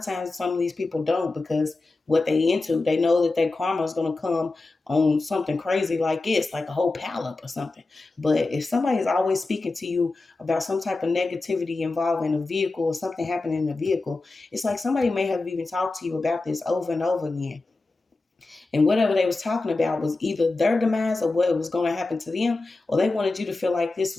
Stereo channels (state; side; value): quieter; right; 3.3 dB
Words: times some of these people don't, because what they into, they know that their karma is going to come on something crazy like this, like a whole pallet or something. But if somebody's always speaking to you about some type of negativity involving a vehicle or something happening in the vehicle, it's like somebody may have even talked to you about this over and over again. And whatever they was talking about was either their demise or what was going to happen to them, or they wanted you to feel like this